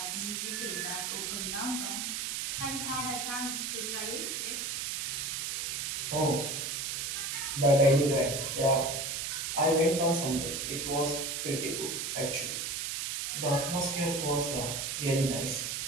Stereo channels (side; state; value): right; noise; hiss, 2 dB below the sound